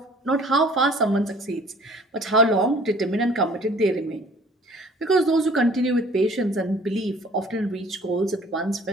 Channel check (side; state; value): both; normal; correlation 0.51